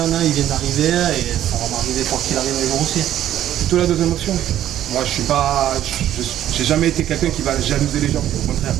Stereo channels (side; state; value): left; quieter; 12.0 dB